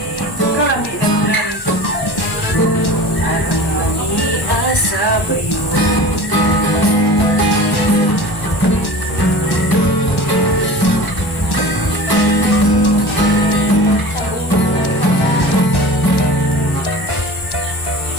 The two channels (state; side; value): late; right; 1.1 ms